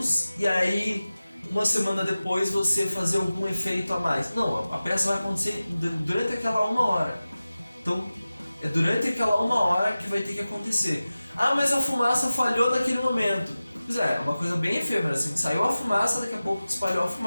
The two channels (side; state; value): both; inverted; correlation -0.96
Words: e aí uma semana depois você fazer algum efeito a mais. Não, a peça vai acontecer durante aquela 1 hora. Então, é durante aquela 1 hora que vai ter que acontecer. Ah, mas a fumaça falhou naquele momento. Pois é uma coisa bem efêmera, assim, saiu a fumaça, daqui a pouco espalhou a